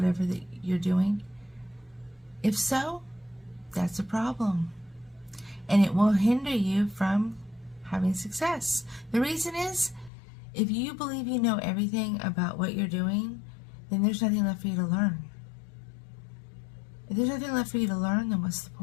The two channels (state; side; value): drops out; right; at 10.1 s